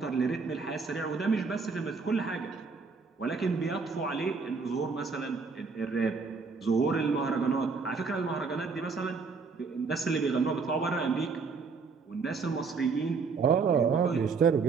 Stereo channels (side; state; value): left; quieter; 4.8 dB